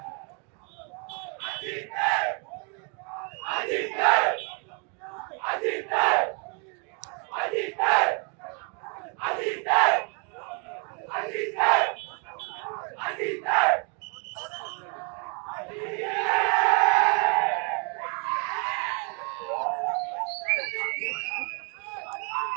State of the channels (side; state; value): left; quieter; 37.5 dB